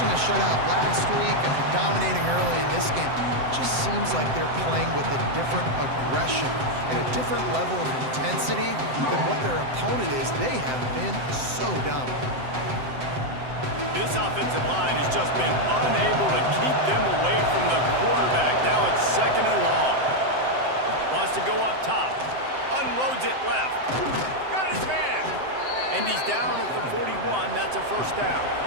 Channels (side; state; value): left; late; 7.8 ms